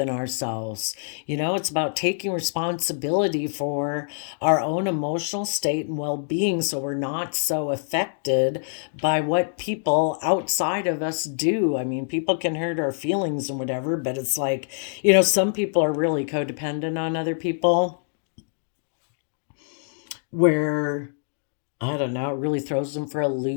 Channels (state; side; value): silent; right; digital silence